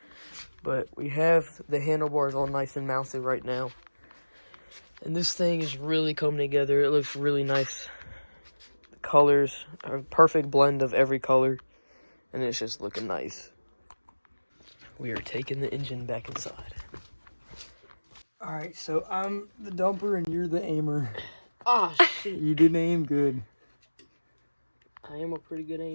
But we have the handlebars all nice and mounted right now. And this thing is really coming together. It looks really nice. The colors are a perfect blend of every color, and it's just looking nice. We are taking the engine back inside. All right, so I'm the dumper and you're the aimer. Ah, shit. You didn't aim good. I am a pretty good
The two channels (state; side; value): inverted; both; correlation -1.00